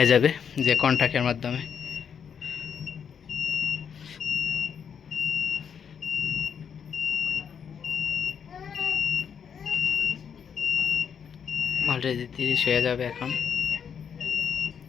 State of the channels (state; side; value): quieter; right; 7.4 dB